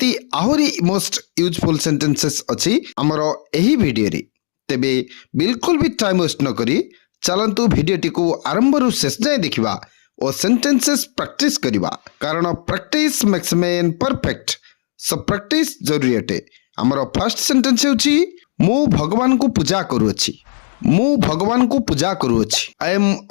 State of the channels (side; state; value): right; silent; digital silence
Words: ଆହୁରି ମୋଷ୍ଟ ୟୁଜଫୁଲ୍ ସେଣ୍ଟେନ୍ସେସ୍ ଅଛି ଆମର ଏହି ଭିଡ଼ିଓରେ। ତେବେ ବିଲକୁଲ ବି ଟାଇମ୍ ୱେଷ୍ଟ ନ କରି ଚାଲନ୍ତୁ ଭିଡ଼ିଓଟିକୁ ଆରମ୍ଭରୁ ଶେଷ ଯାଏଁ ଦେଖିବା ଓ ସେଣ୍ଟେନ୍ସେସ୍ ପ୍ରାକ୍ଟିସ୍ କରିବା। କାରଣ practice makes man perfect. So practice ଜରୁରୀ ଅଟେ। ଆମର ଫାର୍ଷ୍ଟ ସେଣ୍ଟେନ୍ସ ହେଉଛି ମୁଁ ଭଗବାନଙ୍କୁ ପୂଜା କରୁଅଛି। ମୁଁ ଭଗବାନଙ୍କୁ ପୂଜା କରୁଅଛି। I am